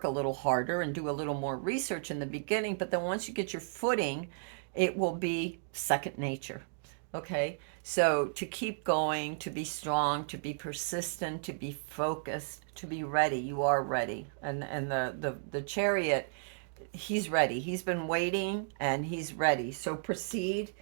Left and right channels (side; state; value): left; silent; digital silence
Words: a little harder and do a little more research in the beginning, but then once you get your footing, it will be second nature. Okay? So to keep going, to be strong, to be persistent, to be focused, to be ready. You are ready. And the chariot, he's ready. He's been waiting and he's ready. So proceed